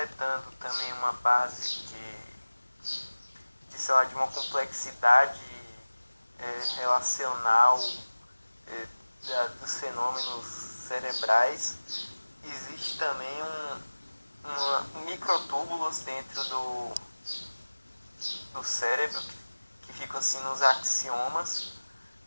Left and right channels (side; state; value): both; inverted; correlation -1.00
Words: também uma base sei lá, de uma complexidade relacional dos fenômenos cerebrais, existe também microtúbulos dentro do cérebro que ficam assim nos axiomas